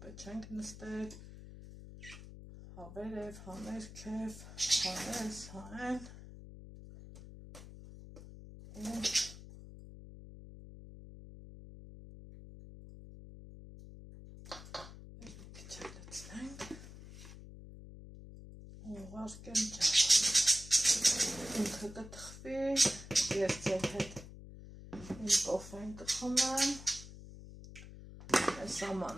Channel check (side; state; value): left; noise; hum, 14 dB below the sound